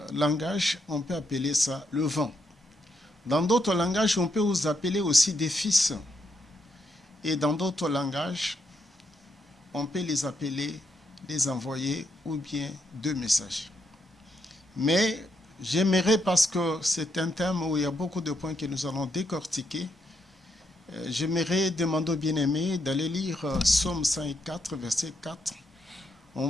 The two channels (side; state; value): both; normal; correlation 0.79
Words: langages, on peut appeler ça le vent. Dans d'autres langages, on peut vous appeler aussi des fils. Et dans d'autres langages, on peut les appeler des envoyés ou bien deux messages. Mais j'aimerais, parce que c'est un thème où il y a beaucoup de points que nous allons décortiquer, j'aimerais demander aux bien-aimés d'aller lire Psaume 104, verset 4.